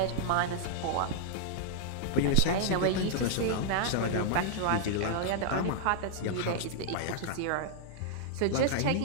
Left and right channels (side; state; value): both; different; correlation -0.01